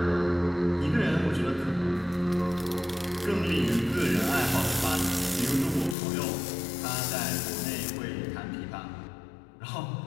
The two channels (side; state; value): right; drops out; at 6.0 s